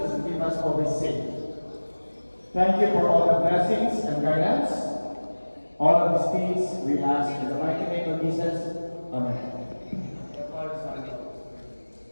keep us always safe. Thank you for all the blessings and guidance. All of these things we ask in the mighty name of Jesus. Amen.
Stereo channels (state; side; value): inverted; both; correlation -1.00